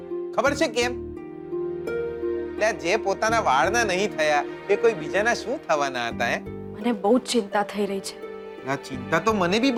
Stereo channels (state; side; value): identical; both; correlation 1.00